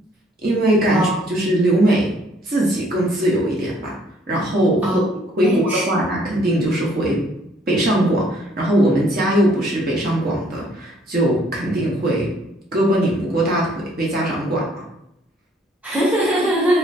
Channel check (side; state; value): both; normal; correlation 0.63